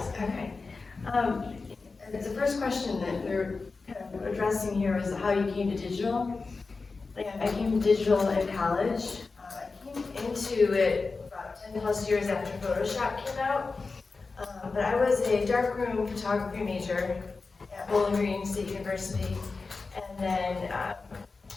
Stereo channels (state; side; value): quieter; right; 4.1 dB